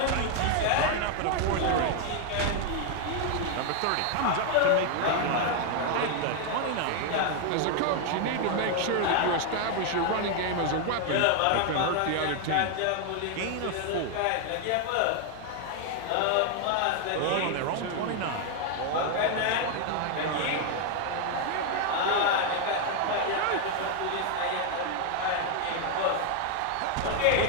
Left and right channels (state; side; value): different; both; correlation 0.01